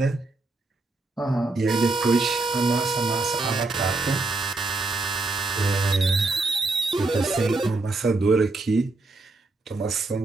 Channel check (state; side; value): quieter; left; 3.3 dB